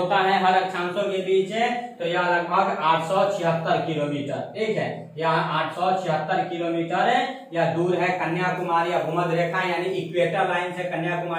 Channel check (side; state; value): both; identical; correlation 1.00